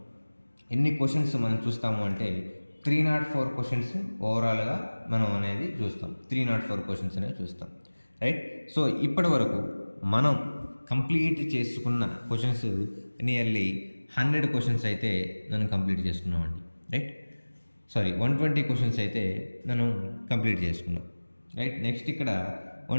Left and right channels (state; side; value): inverted; both; correlation -1.00